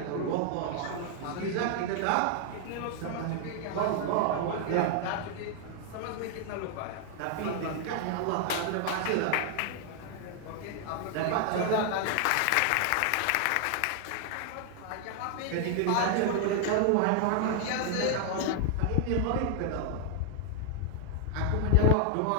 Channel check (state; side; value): different; both; correlation 0.00